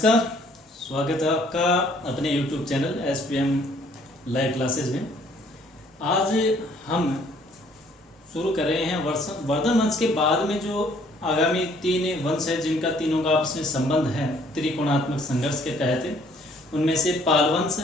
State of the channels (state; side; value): normal; both; correlation 0.61